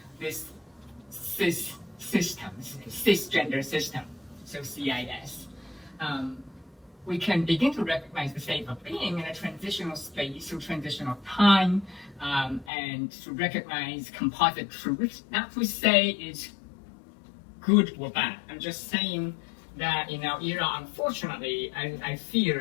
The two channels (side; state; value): right; drops out; at 12.7 s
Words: this cisgender system, so CIS. We can begin to recognize the state of being in a transitional space or transitional time, and to recognize composite truths. Not to say it's good or bad. I'm just saying that in our era, unfortunately, I